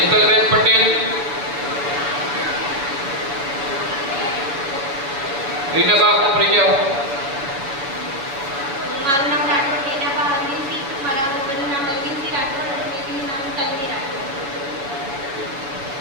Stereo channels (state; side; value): late; left; 7.2 ms